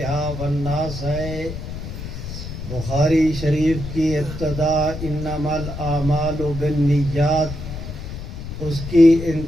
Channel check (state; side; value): noise; left; rumble, 8 dB below the sound